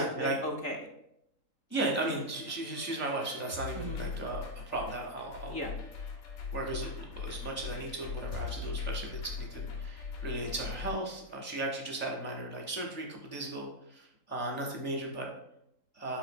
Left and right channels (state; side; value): late; right; 3.5 ms